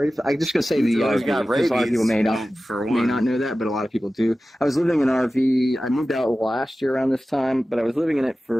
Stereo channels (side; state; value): both; normal; correlation 0.95